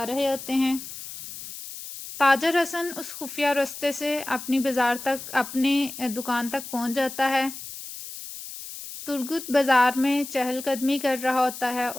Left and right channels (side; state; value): left; noise; hiss, 11 dB below the sound